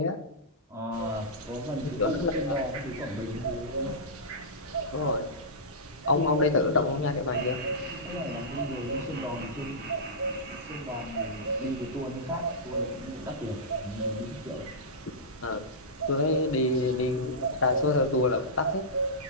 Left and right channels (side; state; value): both; normal; correlation -0.15